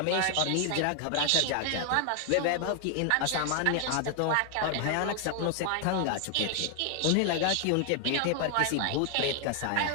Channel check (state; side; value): different; both; correlation 0.00